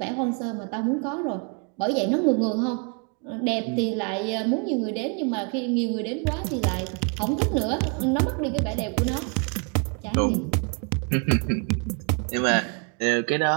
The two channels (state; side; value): quieter; left; 36.3 dB